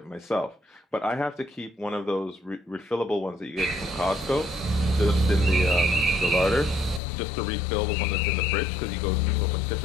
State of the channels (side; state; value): right; drops out; at 7.0 s